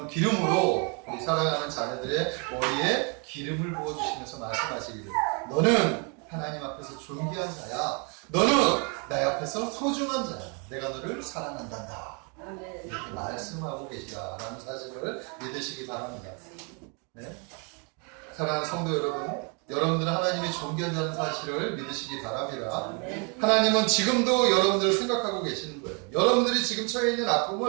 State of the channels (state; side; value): quieter; left; 35.2 dB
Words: 기름으로 우리 사랑하는 자녀들의 머리에 기름을 부어주시면서 말씀하시기를, 너는 하나님 앞에서 존귀한 자야. 너는 나 앞에서 소중한 자야. 내가 너를 사랑한단다. 아멘. 이렇게 말씀하고 계시다라는 사실을 믿으시기 바랍니다. 네? 사랑하는 성도 여러분, 여러분들은 하나님이 존귀한 자라는 사실을 믿으시기 바랍니다. 하나님은 지금도 여러분들을 생각하고 계시는 거예요. 여러분들이 지금 처해 있는